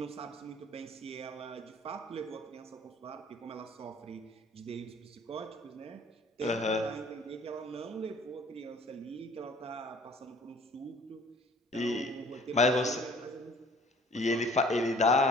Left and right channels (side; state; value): both; normal; correlation 0.52